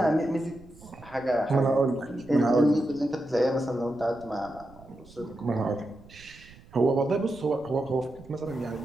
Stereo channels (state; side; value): noise; right; rumble, 22 dB below the sound